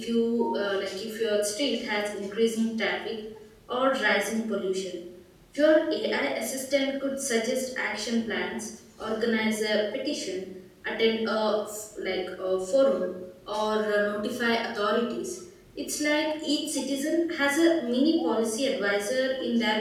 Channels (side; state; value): both; identical; correlation 1.00